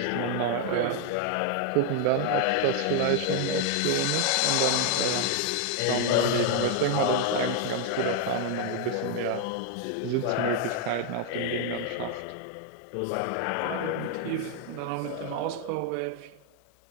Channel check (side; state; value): both; different; correlation 0.00